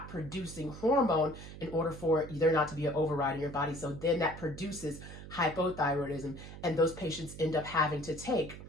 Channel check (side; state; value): right; noise; hum, 13 dB below the sound